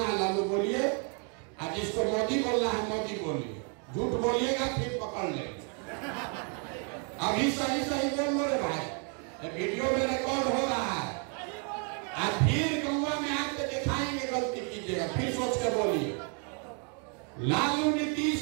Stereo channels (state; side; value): quieter; left; 39.4 dB